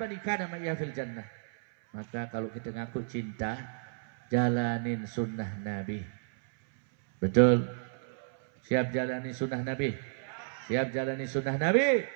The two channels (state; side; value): silent; left; 57 dB below the other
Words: kana ma'ya fil jannah. Maka kalau kita ngaku cinta, jalanin sunnah Nabi. Betul? Siap jalani sunnah Nabi? Siap jalani sunnah Nabi?